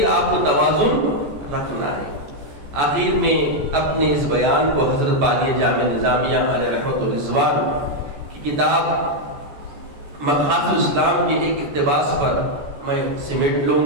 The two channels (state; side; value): late; left; 14 ms